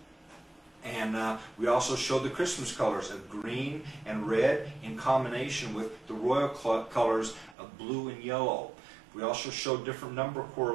And we also showed the Christmas colors of green and red in combination with the royal colors of blue and yellow. We also showed different number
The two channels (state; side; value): drops out; left; at 7.6 s